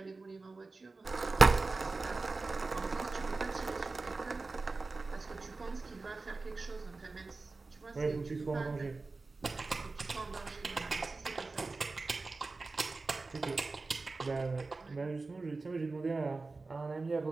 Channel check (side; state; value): left; quieter; 3.7 dB